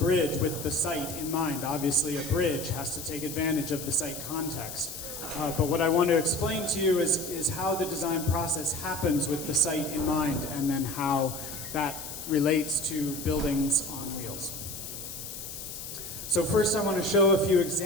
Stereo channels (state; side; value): noise; left; hiss, 9 dB below the sound